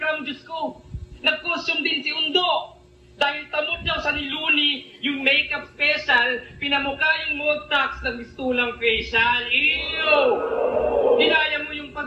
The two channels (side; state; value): both; identical; correlation 1.00